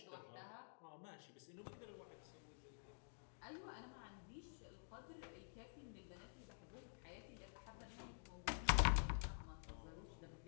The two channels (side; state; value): right; silent; digital silence